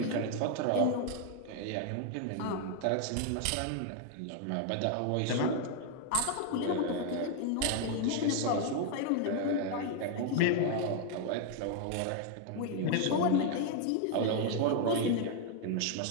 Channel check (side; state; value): both; different; correlation 0.00